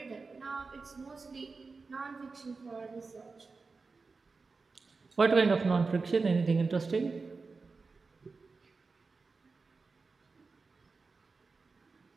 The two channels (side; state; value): left; quieter; 4.2 dB